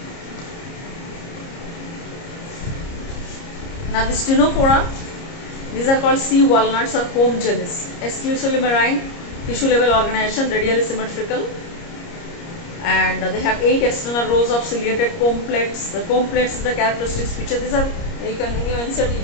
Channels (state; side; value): late; right; 30 ms